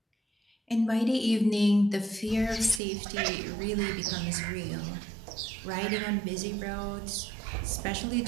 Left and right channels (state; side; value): drops out; left; at 2.8 s